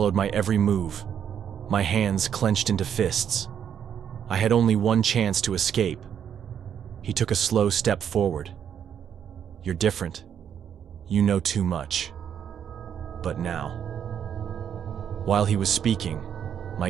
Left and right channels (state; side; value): quieter; left; 8.7 dB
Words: my every move. My hands clenched into fists. I had only one chance to escape. He took a slow step forward. "You're different. You know too much. But now." While he was speaking,